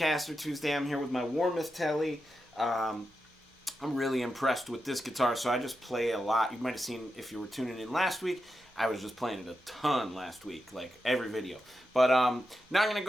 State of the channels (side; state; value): both; normal; correlation 0.88